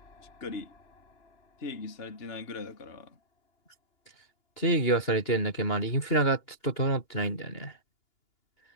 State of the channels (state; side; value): late; right; 2.9 ms